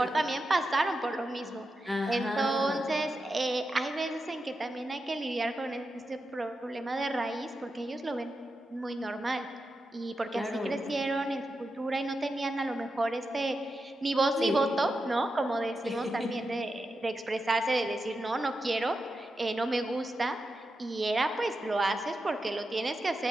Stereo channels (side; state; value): both; normal; correlation 0.89